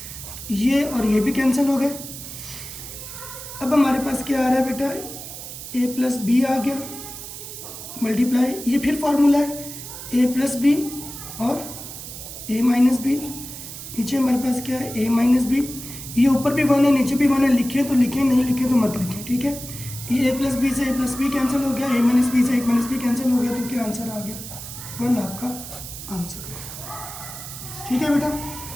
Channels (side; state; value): right; noise; hiss, 11 dB below the sound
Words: ये और ये भी कैंसिल हो गए। अब हमारे पास क्या आ रहा है बेटा a + b आ गया, मल्टीप्लाई ये फिर फार्मूला है a + b और a - b। नीचे हमारे पास क्या है a - b, ये ऊपर भी 1 है नीचे भी 1 है, लिखे तो लिखें नहीं लिखे तो मत लिखें, ठीक है। ये a + b से a + b कैंसिल हो गया, a - b से a - b कैंसिल हो गया, तो क्या आंसर आ गया 1 आपका आंसर हो गया, ठीक है बेटा।